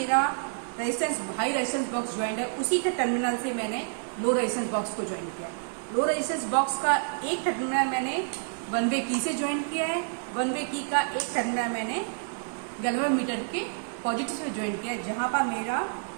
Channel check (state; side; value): silent; left; 59 dB below the other